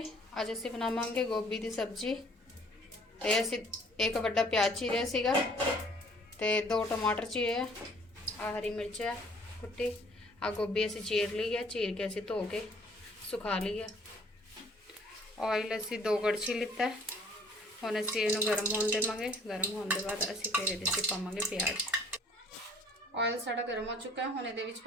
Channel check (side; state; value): both; normal; correlation 0.57